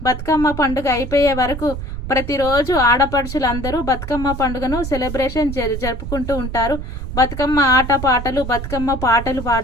బతుకమ్మ పండుగ అయిపోయే వరకు ప్రతిరోజు ఆడపడుచులందరూ బతుకమ్మ పండుగను సెలబ్రేషన్ జరుపుకుంటూ ఉంటారు. బతుకమ్మ ఆటపాటలు, బతుకమ్మ పాటలు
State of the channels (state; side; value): noise; right; rumble, 7 dB below the sound